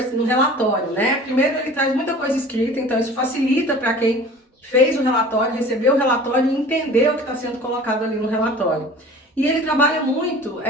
no relatório, né? Primeiro, ele traz muita coisa escrita, então isso facilita para quem fez o relatório, recebeu o relatório e entender o que está sendo colocado ali no relatório. E ele trabalha muito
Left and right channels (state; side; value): normal; both; correlation 0.43